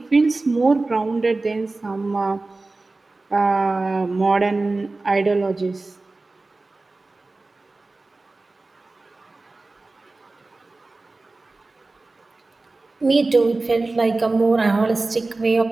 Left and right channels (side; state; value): left; quieter; 3.3 dB